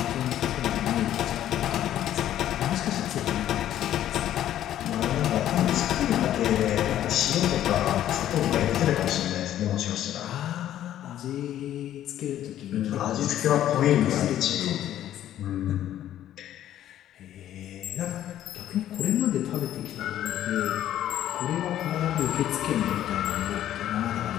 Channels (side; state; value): right; quieter; 11.9 dB